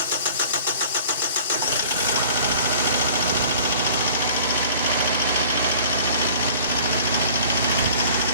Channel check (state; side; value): inverted; both; correlation -0.48